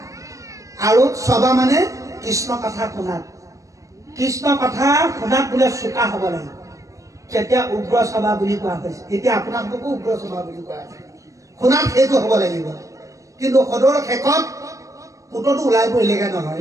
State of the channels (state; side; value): late; left; 0.16 ms